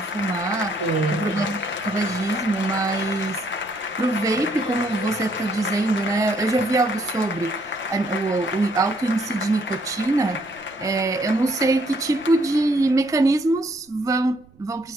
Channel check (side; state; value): right; noise; rumble, 29 dB below the sound